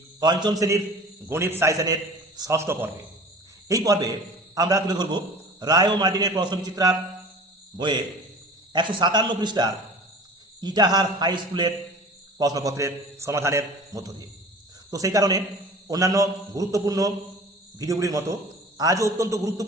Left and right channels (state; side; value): normal; both; correlation 0.42